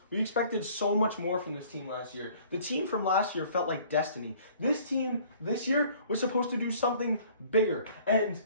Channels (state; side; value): inverted; both; correlation -0.54